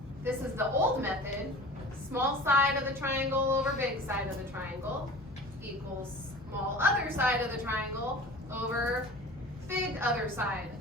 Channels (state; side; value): normal; both; correlation 0.40